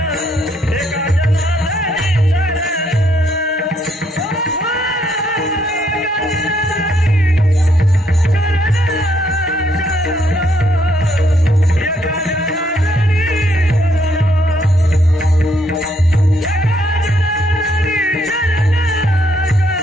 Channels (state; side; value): normal; both; correlation 0.72